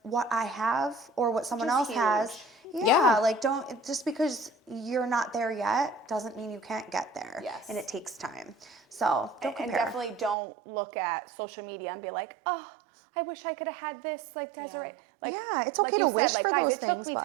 what I have or what someone else has. Yeah, like don't, just because you're not there yet doesn't mean you can't get there. Yes. And it takes time. So don't compare. And definitely don't look at social media and be like, oh, I wish I could have had this. Like, Desiree. Like, it's okay to wish for those things. It took me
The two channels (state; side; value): drops out; left; at 10.4 s